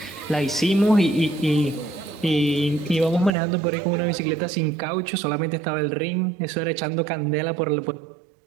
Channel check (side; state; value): left; drops out; at 3.3 s